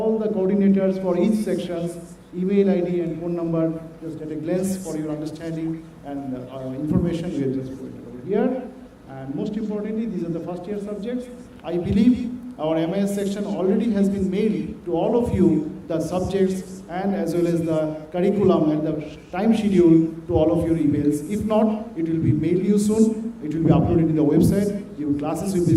the coordinators for each sections, email ID and phone number, just at a glance for your understanding and information we have just put it over here. And most importantly, these are the first year subjects. I believe our MIS section already has been mailed to all of you the subjects and as well as the curriculum and the time schedule to all of your emails. If not, it will be mailed you soon. It will be uploaded in the website. Your classes will be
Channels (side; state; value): both; identical; correlation 1.00